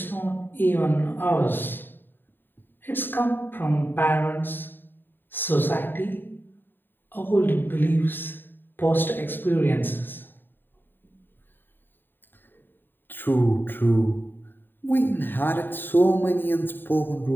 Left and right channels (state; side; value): late; right; 0.094 ms